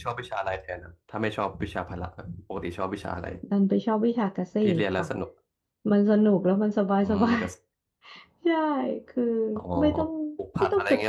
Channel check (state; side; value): identical; both; correlation 1.00